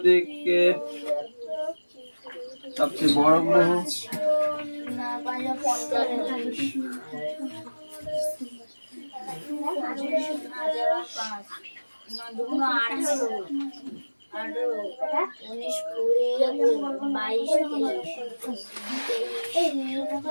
সবচেয়ে বড় গ্রহ।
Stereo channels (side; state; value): both; inverted; correlation -1.00